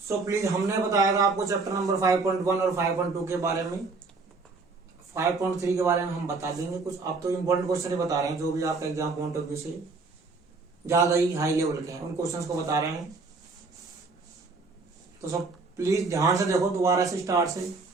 प्लीज, हमने बताया था आपको चैप्टर नंबर 5.1 और 5.2 के बारे में। 5.3 के बारे में हम बता देंगे कुछ। आप तो इम्पोर्टेंट क्वेश्चन ही बता रहे हैं, जो भी आपका एग्जाम पॉइंट ऑफ व्यू से ज्यादा ही हाई लेवल के हैं उन क्वेश्चंस को बता रहे हैं। तो सब प्लीज ध्यान से देखो, दोबारा से स्टार्ट से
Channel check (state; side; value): quieter; left; 4.0 dB